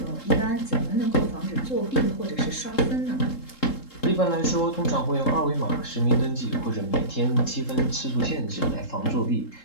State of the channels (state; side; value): late; right; 3.7 ms